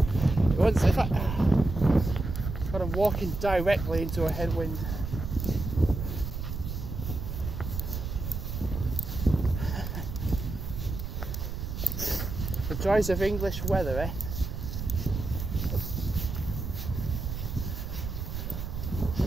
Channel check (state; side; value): noise; right; rumble, 5 dB below the sound